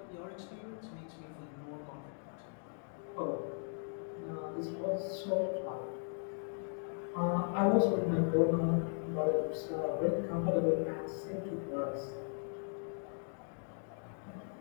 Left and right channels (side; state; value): right; silent; 53 dB below the other